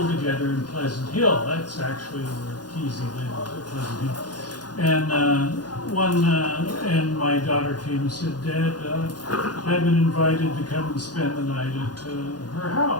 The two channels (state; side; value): late; right; 0.69 ms